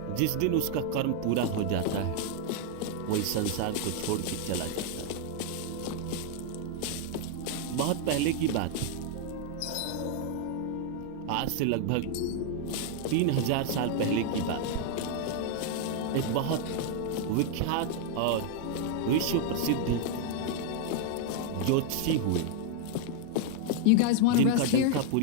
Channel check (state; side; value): different; both; correlation 0.00